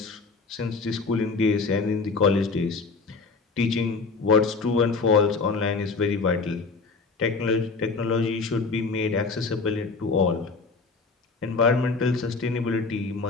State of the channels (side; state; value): right; quieter; 4.3 dB